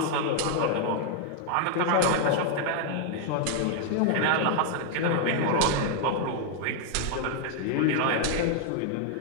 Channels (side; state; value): both; different; correlation 0.00